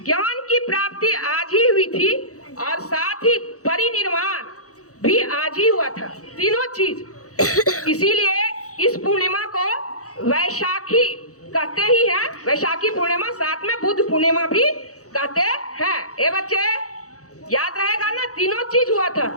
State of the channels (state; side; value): late; right; 0.65 ms